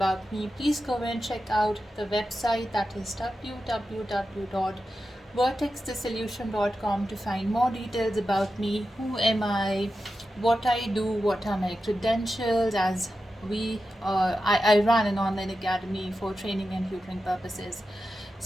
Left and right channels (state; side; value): normal; both; correlation 0.91